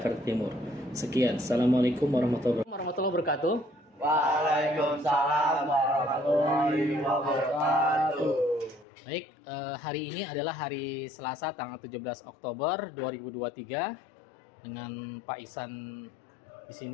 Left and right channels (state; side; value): drops out; right; at 8.8 s